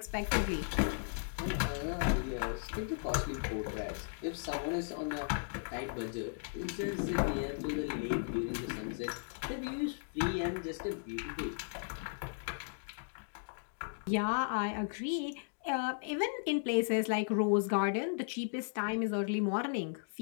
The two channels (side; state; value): right; silent; digital silence